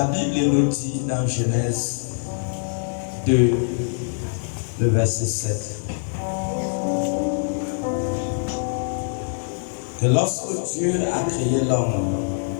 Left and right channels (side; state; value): right; silent; digital silence